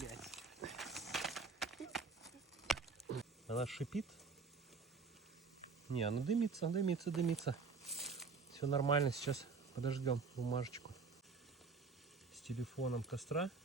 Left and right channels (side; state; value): left; quieter; 4.7 dB